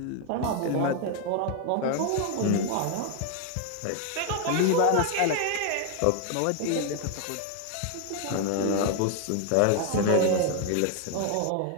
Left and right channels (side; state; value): both; different; correlation 0.01